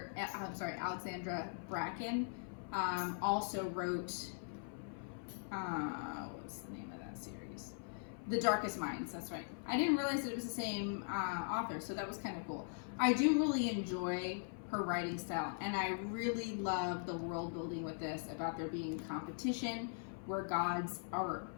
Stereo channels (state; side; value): silent; right; 51 dB below the other